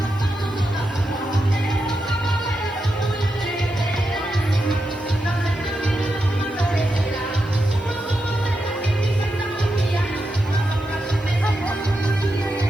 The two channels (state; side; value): noise; right; hiss, 29 dB below the sound